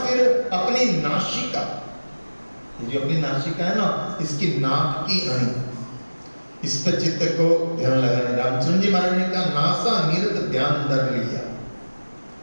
अपनी नासिका, जो अपनी नासिका है ना, इसकी नाक की अणी, इस पर चित्त को ध्यान लगाना। रामचंद्र जी महाराज ने कहा नासा निरत ध्यान धर लिया,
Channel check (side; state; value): both; inverted; correlation -1.00